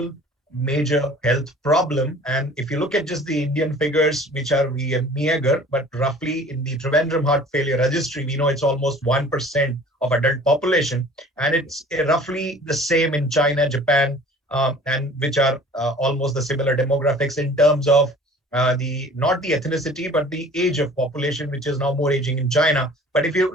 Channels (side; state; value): both; normal; correlation 0.47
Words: major health problem. And if you look at just the Indian figures, which are meager, but roughly in the Trivandrum Heart Failure Registry, we know it's almost 1% of adult population. And it's roughly the same in China, Japan, and which are almost the similar demographics in terms of not the ethnicity, but the age of population, which is now more aging in China. But if you